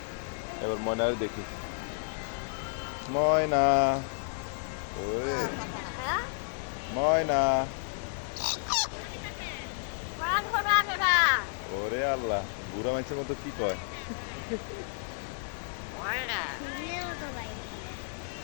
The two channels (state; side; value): silent; right; digital silence